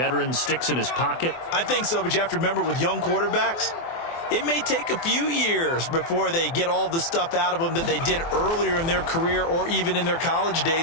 sticks in his pocket? I think so, but you have to remember with young quarterbacks, it may take a few years before they get all the stuff out of them that they did earlier in their career or even in their college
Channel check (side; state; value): right; late; 24 ms